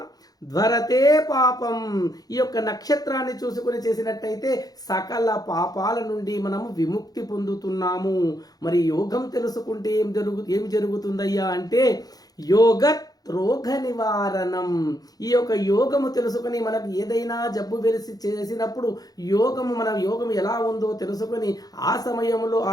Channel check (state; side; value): late; right; 0.18 ms